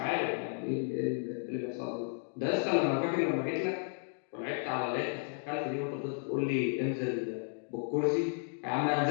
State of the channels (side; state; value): right; silent; 55 dB below the other